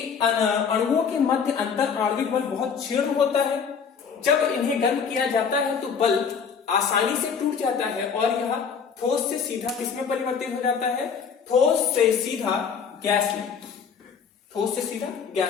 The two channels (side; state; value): right; quieter; 6.4 dB